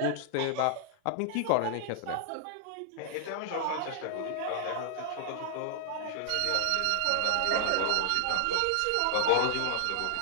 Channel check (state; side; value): different; both; correlation -0.01